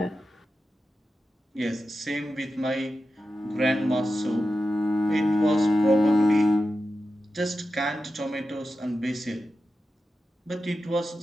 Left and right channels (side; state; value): both; normal; correlation 0.91